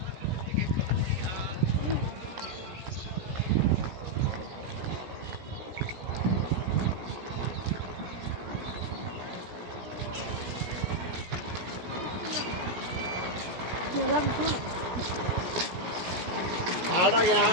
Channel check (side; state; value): left; late; 17 ms